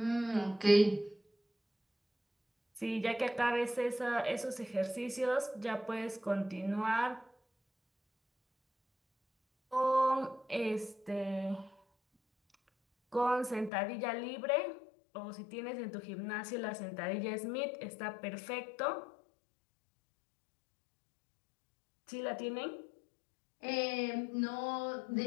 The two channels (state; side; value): drops out; right; at 13.7 s